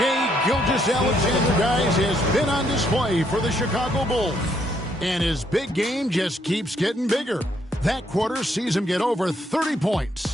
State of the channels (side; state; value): both; normal; correlation 0.72